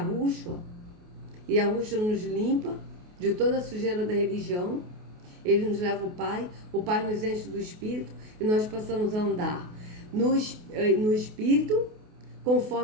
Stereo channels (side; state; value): left; late; 28 ms